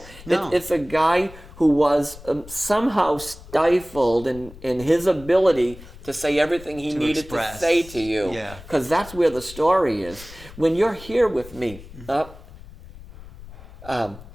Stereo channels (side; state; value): left; noise; rumble, 17 dB below the sound